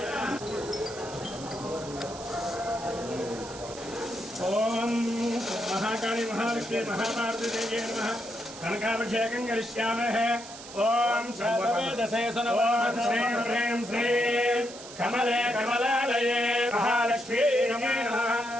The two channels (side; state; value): right; noise; hiss, 14 dB below the sound